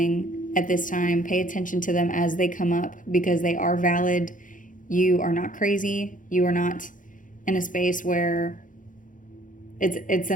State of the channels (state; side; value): late; right; 0.38 ms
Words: at this time, pay attention to them as they come up, because they are valid. You are not crazy. You are not in a space where it's